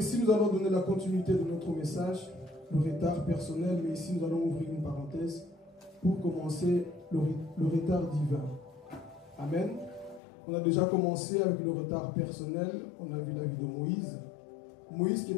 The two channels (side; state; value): right; drops out; at 10.2 s